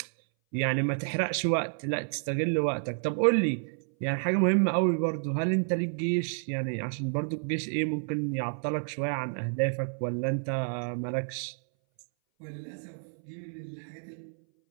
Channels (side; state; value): left; silent; 58 dB below the other